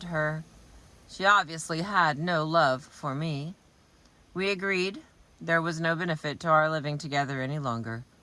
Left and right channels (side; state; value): both; identical; correlation 1.00